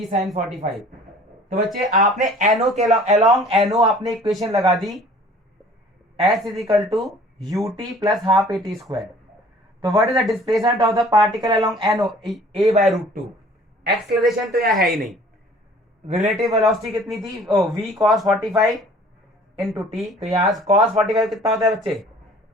sin 45. तो बच्चे आपने NO के अलोंग NO आपने इक्वेशन लगा दी S is equal to ut plus half at square. तो what is the displacement of the particle along NO? A/√2. एक्सेलरेशन तो यहाँ है ही नहीं. रिलेटिव वेलोसिटी कितनी थी? v cos 45 into t. तो यहाँ cos 45 कितना होता है बच्चे?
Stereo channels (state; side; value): normal; both; correlation 0.51